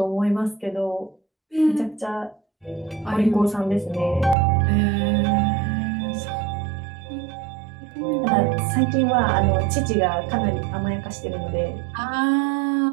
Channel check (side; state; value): left; drops out; at 4.4 s